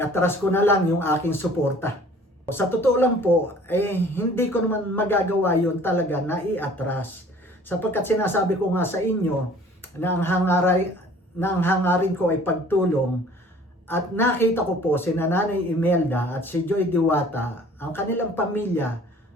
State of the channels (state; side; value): normal; both; correlation 0.51